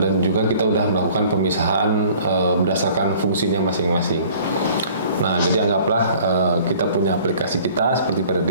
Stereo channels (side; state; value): both; inverted; correlation -0.52